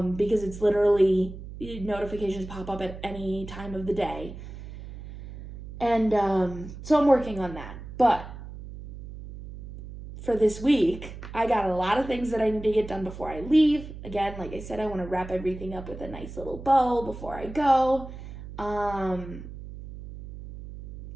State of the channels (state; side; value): noise; right; hum, 12 dB below the sound